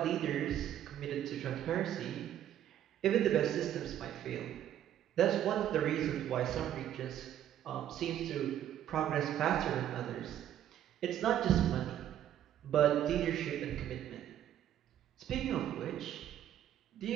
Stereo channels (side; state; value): left; quieter; 11.1 dB